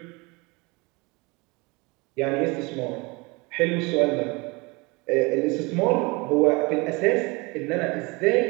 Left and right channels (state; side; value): quieter; left; 26.5 dB